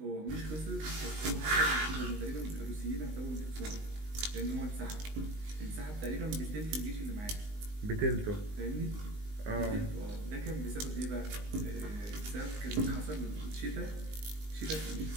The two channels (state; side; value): late; left; 19 ms